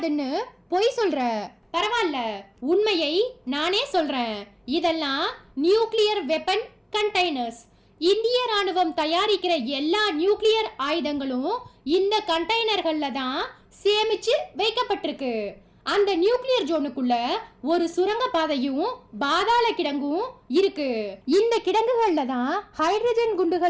பொய் சொல்ற. பரவாயில்ல, உண்மையை நானே சொல்றேன். இதெல்லாம் நியூக்ளியர் வெப்பன் கண்டெய்னர்ஸ். இந்திய ராணுவம் தயாரிக்கிற எல்லா நியூக்ளியர் ஆயுதங்களும் இந்த கண்டெய்னர்கள்ல தான் சேமிச்சு வைக்கப்பட்டிருக்கு. அந்த நியூக்ளியர் ஜோனுக்குள்ள ஒரு சுரங்க பாதையும் பாதாள கிடங்கும் இருக்கு. இந்த கிடங்குகள்ல தான் ஹைட்ரஜன்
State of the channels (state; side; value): identical; both; correlation 1.00